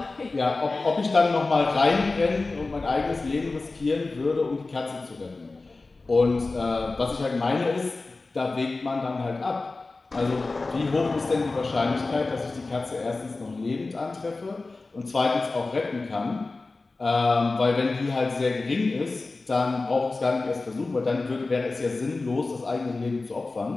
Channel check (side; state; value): right; quieter; 3.5 dB